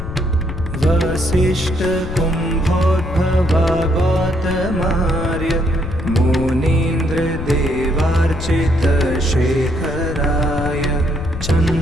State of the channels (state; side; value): noise; left; rumble, 7 dB below the sound